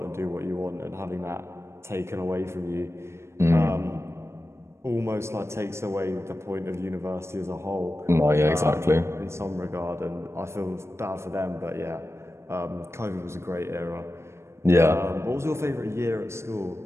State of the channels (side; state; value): left; late; 0.13 ms